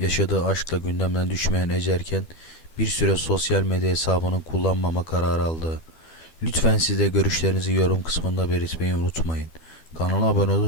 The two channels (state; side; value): late; right; 12 ms